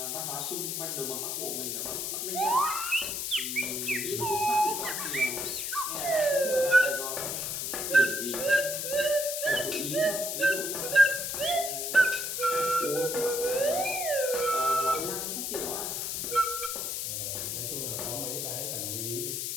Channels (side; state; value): left; noise; hiss, 2 dB below the sound